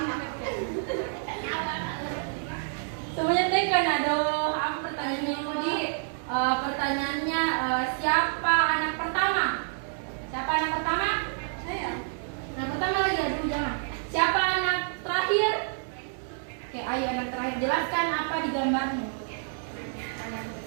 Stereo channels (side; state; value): left; silent; digital silence